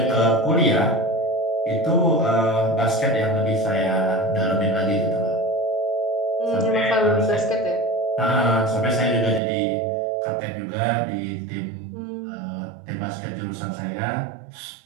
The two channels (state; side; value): drops out; left; at 9.4 s